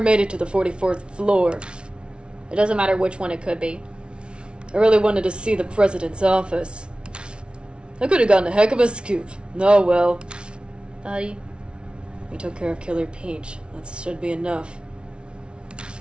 made it to the 44th floor. it doesn't matter which one it could be. I really wanted to see the president's office. I could have gotten a heck of a scoop. Oh well. Buddy. We took care of Killer Peach. That should be enough.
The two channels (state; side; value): late; left; 0.057 ms